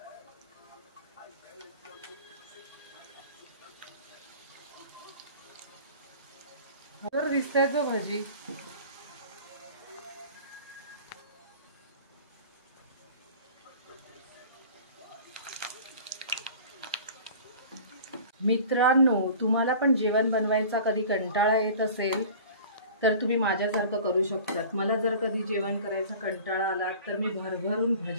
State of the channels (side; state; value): both; inverted; correlation -0.42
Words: दिसते तो भजी। मित्रांनो, तुम्हाला पण जेवण बनवायचा कधी कंटाळा येत असेल तर तुम्ही माझ्यासारखं करू शकतात। मला जर कधी जेवण करायचा कंटाळा आला तर मी भरभरून